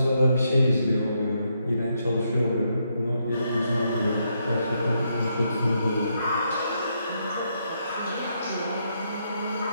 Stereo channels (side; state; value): both; inverted; correlation -0.78